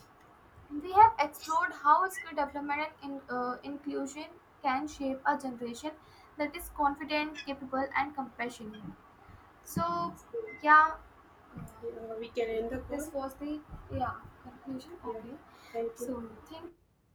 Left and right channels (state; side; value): identical; both; correlation 1.00